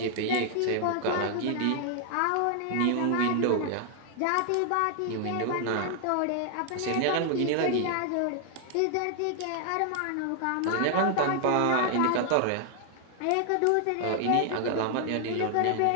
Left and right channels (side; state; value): both; different; correlation 0.00